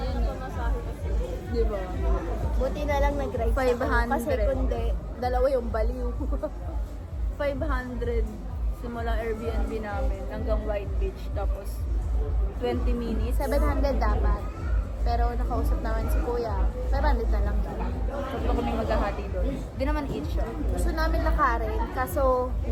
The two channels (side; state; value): both; identical; correlation 1.00